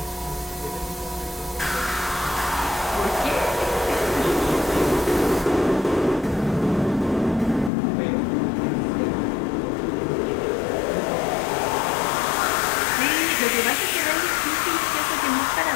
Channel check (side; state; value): right; drops out; at 7.7 s